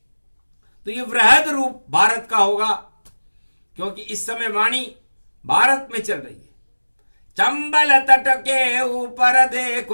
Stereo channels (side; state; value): both; inverted; correlation -1.00